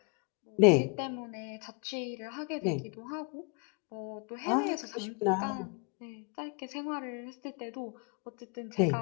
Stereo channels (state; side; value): quieter; right; 34.2 dB